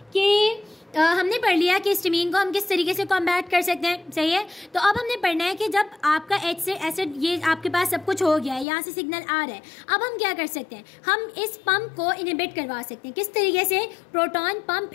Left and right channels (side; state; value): right; drops out; at 8.7 s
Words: कि हमने पढ़ लिया कि हिस्टामीन को हम किस तरीके से कॉम्बैट कर सकते हैं। सही है, तो अब हमने पढ़ना है कि जब आपका एच से एसिड, ये आपके पास सब कुछ हो गया है, यहाँ से सिग्नल आ रहा है, अब हम क्या कर सकते हैं, हम इस पंप को इनहिबिट करवा सकते हैं। किस तरीके से, प्रोटॉन पंप